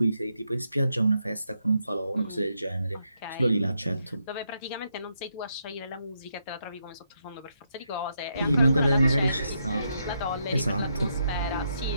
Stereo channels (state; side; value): inverted; both; correlation -0.80